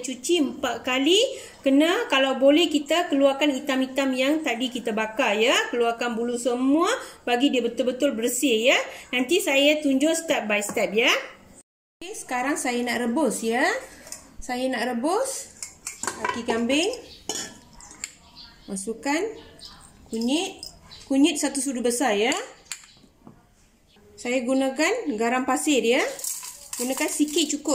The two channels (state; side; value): identical; both; correlation 1.00